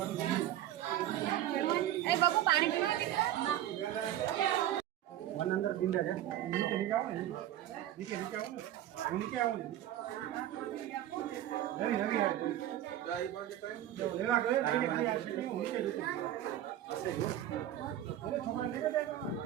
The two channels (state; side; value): quieter; left; 12.4 dB